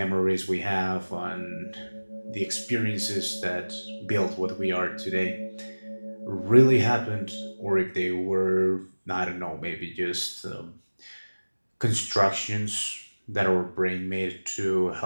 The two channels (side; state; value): both; inverted; correlation -1.00